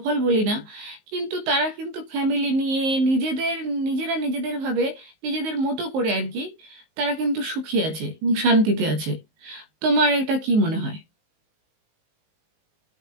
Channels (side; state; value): left; late; 19 ms